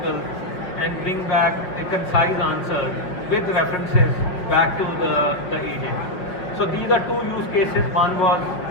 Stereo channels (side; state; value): right; late; 5.5 ms